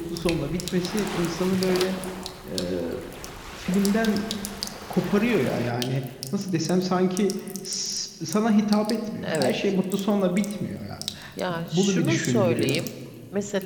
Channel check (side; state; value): both; identical; correlation 1.00